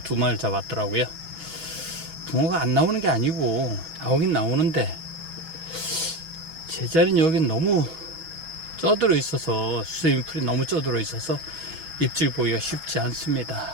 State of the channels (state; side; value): late; left; 6.1 ms